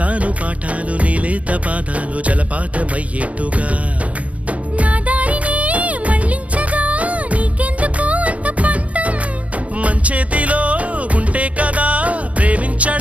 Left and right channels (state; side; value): late; left; 0.066 ms